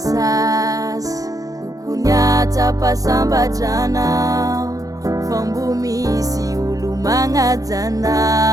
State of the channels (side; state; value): left; late; 0.17 ms